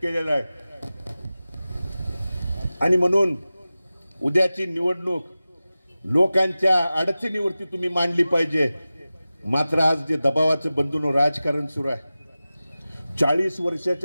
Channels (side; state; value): both; inverted; correlation -0.96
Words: आहे. आणि म्हणून उद्याची निवडणूक लोकांच्या अडचणीवरती तुम्ही मांडली पाहिजे. मात्र आज जे दबावाचं बंधून राजकारण सुरू आहे, 40